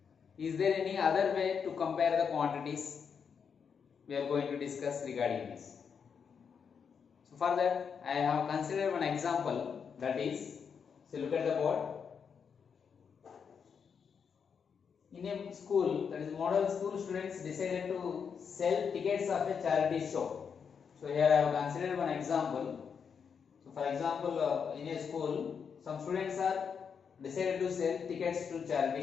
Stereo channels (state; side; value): quieter; right; 6.6 dB